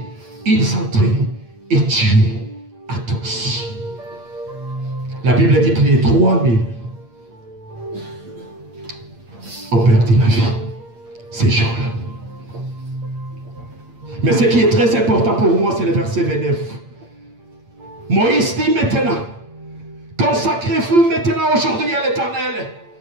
ils entraient et tuaient à tous. La Bible dit que les 3000 ont perdu la vie ces jours-là. Mais ce qui est très important pour moi, c'est le verset 29. Moïse dit maintenant, consacrez-vous maintenant aujourd'hui à l'Éternel,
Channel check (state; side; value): late; left; 8.7 ms